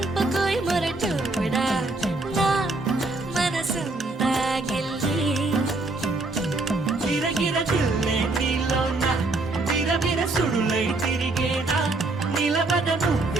మొరటోడా నా మనసంతా గిల్లి గిరగిర తిల్లే నీలోన విరవిర సుడులై తిరిగేనా నిలబడ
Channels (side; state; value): left; quieter; 3.1 dB